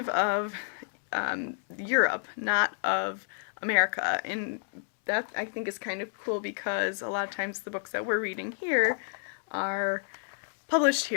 of Europe, not of America. And that, I think, is kind of cool, because a lot of times the books that we're reading here are published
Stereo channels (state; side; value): silent; right; 58 dB below the other